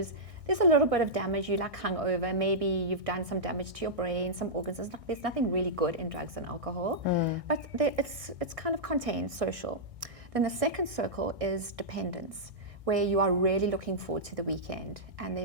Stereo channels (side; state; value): left; late; 1.6 ms